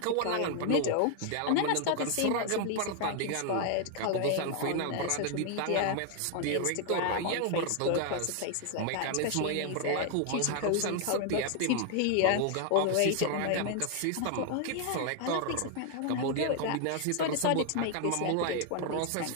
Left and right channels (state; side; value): different; both; correlation 0.00